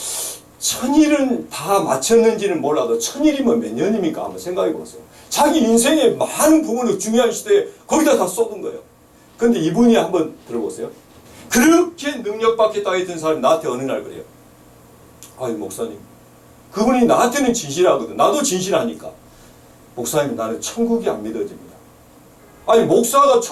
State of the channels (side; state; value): both; identical; correlation 1.00